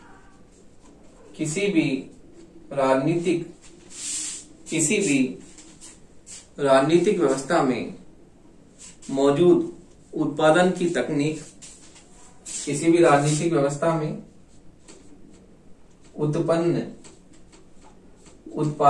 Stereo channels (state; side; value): identical; both; correlation 1.00